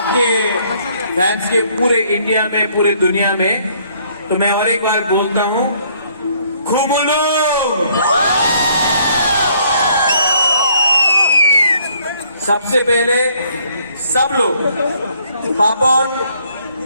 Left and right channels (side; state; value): both; inverted; correlation -0.65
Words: fans के पूरे India में पूरे दुनिया में तो मैं और एक बार बोलता हूं खुमुलो सबसे पहले सब लोग पापन